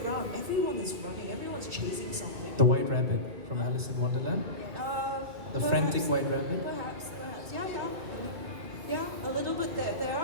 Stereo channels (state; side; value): late; left; 2.2 ms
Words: everyone is running, everyone's chasing something. The White Rabbit from Alice in Wonderland? The frantic White Rabbit? Perhaps. Yeah, a little bit. There